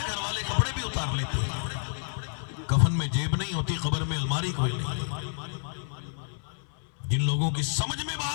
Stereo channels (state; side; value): silent; right; digital silence